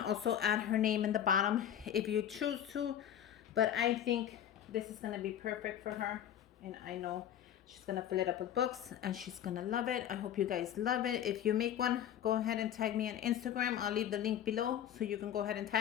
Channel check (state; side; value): quieter; right; 10.2 dB